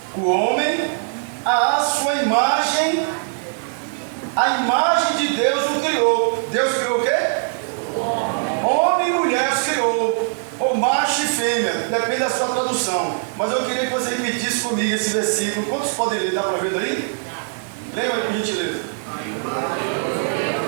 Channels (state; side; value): silent; left; digital silence